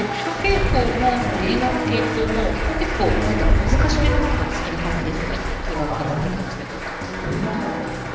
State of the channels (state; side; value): identical; both; correlation 1.00